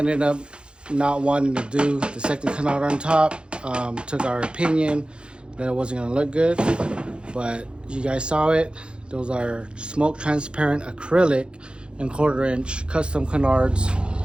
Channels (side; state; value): left; late; 0.054 ms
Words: up not wanting to do the second canard on top. Took our opinion that it wasn't gonna look good, but you guys saw it. Those are smoke transparent acrylic and 1/4 inch custom canards